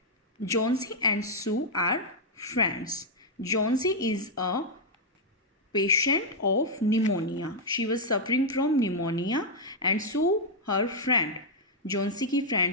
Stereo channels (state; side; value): normal; both; correlation -0.04